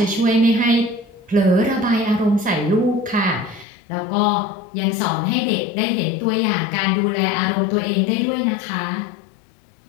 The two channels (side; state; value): right; drops out; at 3.7 s